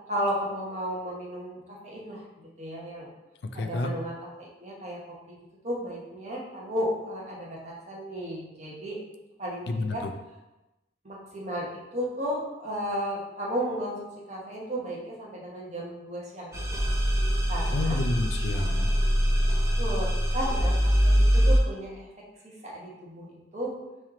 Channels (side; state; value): both; normal; correlation 0.80